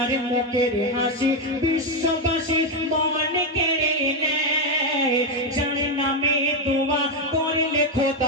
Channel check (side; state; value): both; normal; correlation 0.06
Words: মুখের হাসি বিশ্ববাসী মন কেড়ে নেয়, যার নামে দোয়া করলে